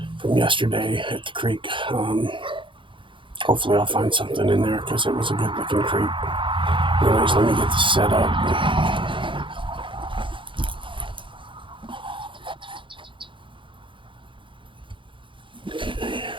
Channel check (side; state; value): left; late; 0.24 ms